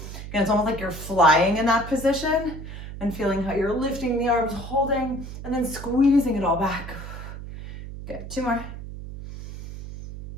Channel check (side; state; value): right; noise; hum, 10 dB below the sound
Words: Again, it's almost like you're flying in that position, and feeling how you're lifting the arms, holding, and then squeezing it all back. Good, 2 more.